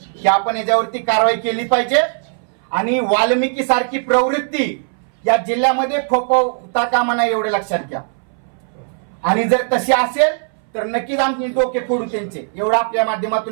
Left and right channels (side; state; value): left; silent; 63 dB below the other